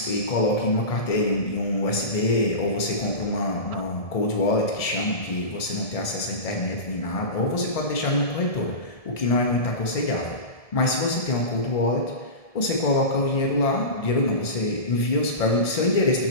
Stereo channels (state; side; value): late; right; 1.7 ms